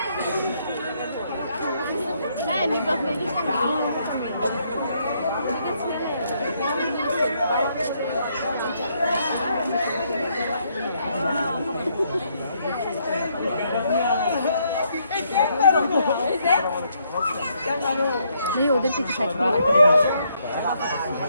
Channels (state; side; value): inverted; both; correlation -0.72